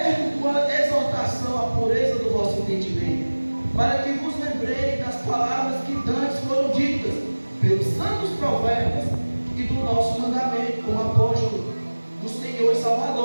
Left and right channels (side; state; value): both; inverted; correlation -1.00